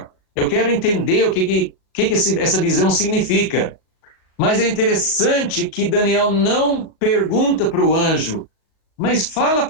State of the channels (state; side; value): late; right; 38 ms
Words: Eu quero entender o que essa visão significa. Mas é interessante que Daniel não pergunta para o anjo, mas fala